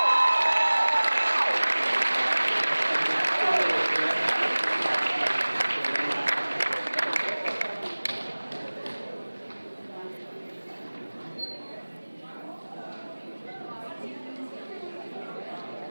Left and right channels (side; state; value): both; inverted; correlation -1.00